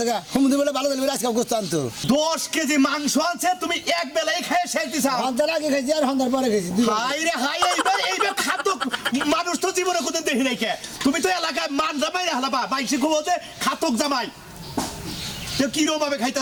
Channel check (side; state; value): both; identical; correlation 1.00